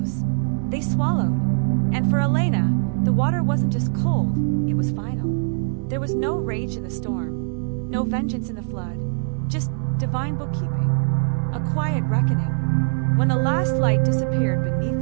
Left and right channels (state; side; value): silent; left; digital silence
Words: They swallowed. And for Elena, the water wasn't just cold, it was final. There was no rage in the storm, no vengeance in the flood, just divine bookkeeping, a quiet reckoning. When the last light disappeared beneath